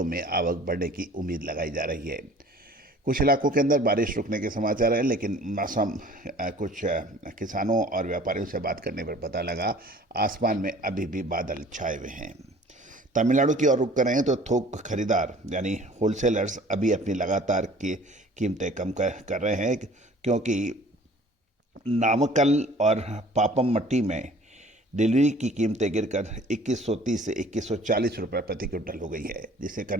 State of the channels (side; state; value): both; normal; correlation 0.50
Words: में आवक बढ़ने की उम्मीद लगाई जा रही है। कुछ इलाकों के अंदर बारिश रुकने के समाचार हैं, लेकिन मौसम कुछ किसानों और व्यापारियों से बात करने पर पता लगा आसमान में अभी भी बादल छाए हुए हैं। तमिलनाडु की ओर रुख करें तो थोक खरीदार यानी होलसेलर्स अभी अपनी लगातार की कीमतें कम कर रहे हैं, क्योंकि नामक्कल और पापमट्टी में डिलीवरी की कीमतें गिरकर 2130 से 2140 रुपये प्रति क्विंटल हो गई है, जिससे